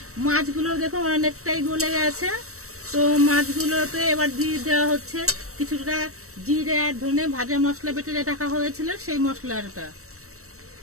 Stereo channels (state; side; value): late; left; 0.64 ms